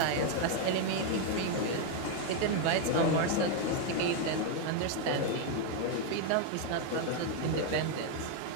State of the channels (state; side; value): different; both; correlation 0.01